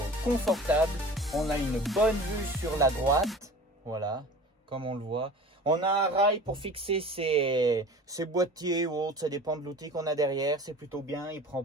confortable. On a une bonne vue sur la droite, voilà, comme on le voit. On a un rail pour fixer ses boîtiers ou autres, ça dépend de l'outil qu'on a derrière. C'est plutôt bien, il prend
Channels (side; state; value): both; normal; correlation 0.40